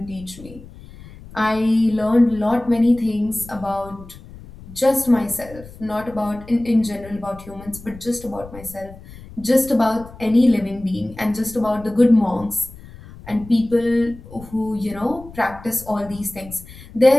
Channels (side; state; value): left; noise; rumble, 18 dB below the sound